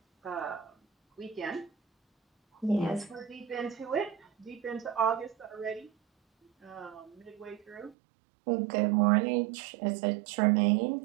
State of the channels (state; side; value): drops out; left; at 8.0 s